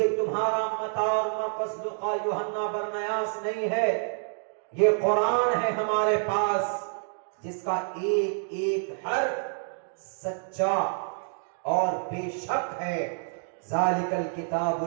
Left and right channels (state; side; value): silent; left; digital silence